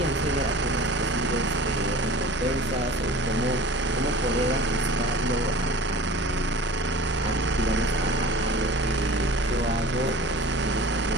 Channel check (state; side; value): normal; both; correlation 0.41